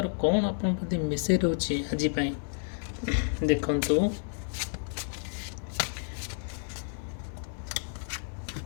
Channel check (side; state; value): right; silent; digital silence